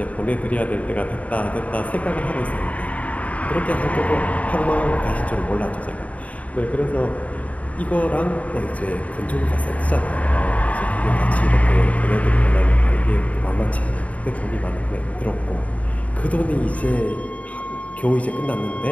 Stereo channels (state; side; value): late; right; 0.068 ms